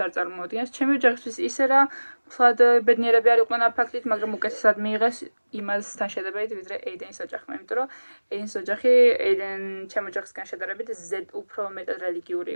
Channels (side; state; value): both; inverted; correlation -1.00